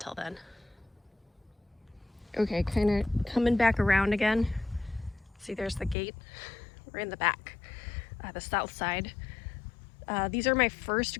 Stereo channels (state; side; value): drops out; right; at 6.0 s